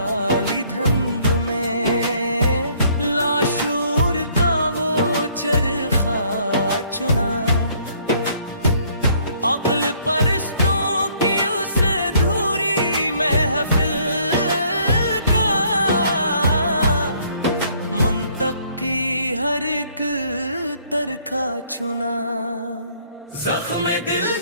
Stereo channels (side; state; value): both; inverted; correlation -0.62